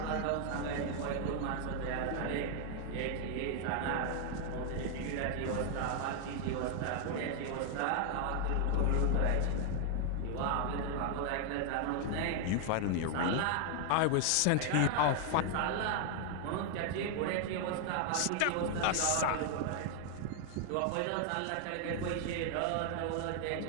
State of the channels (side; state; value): both; different; correlation 0.00